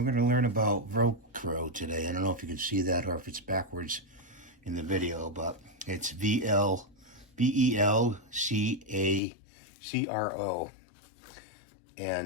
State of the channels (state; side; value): drops out; right; at 9.2 s